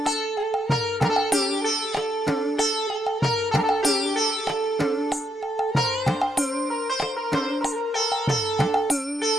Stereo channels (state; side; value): normal; both; correlation 0.80